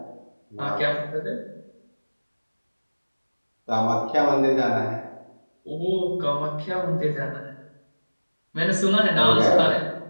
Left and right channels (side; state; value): both; inverted; correlation -1.00